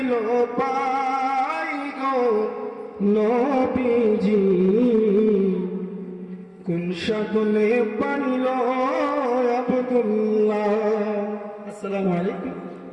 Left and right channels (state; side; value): identical; both; correlation 1.00